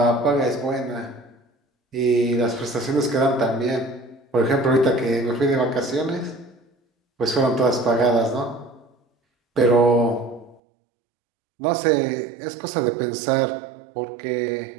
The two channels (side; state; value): left; drops out; at 10.6 s